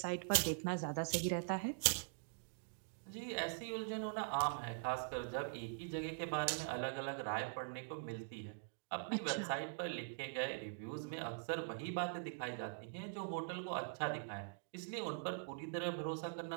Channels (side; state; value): left; silent; digital silence